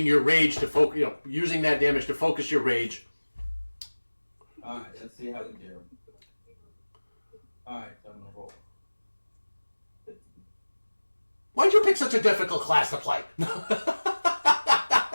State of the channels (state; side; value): inverted; both; correlation -1.00